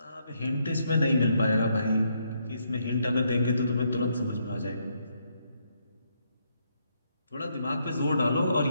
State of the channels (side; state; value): both; inverted; correlation -0.76